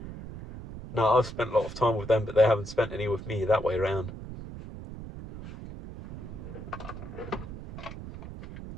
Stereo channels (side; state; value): right; noise; rumble, 11 dB below the sound